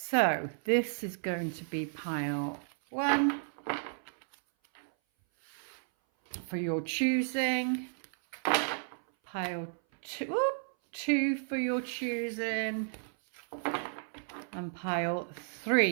this is going to be pile 1 for your choosing. Pile 2 for your choosing, and pile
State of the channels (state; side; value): silent; left; 56 dB below the other